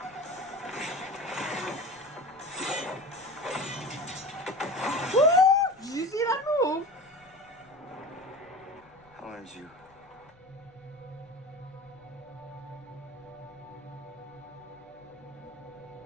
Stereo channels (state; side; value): noise; left; rumble, 28 dB below the sound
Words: Woo! Did you see that move? How old is you?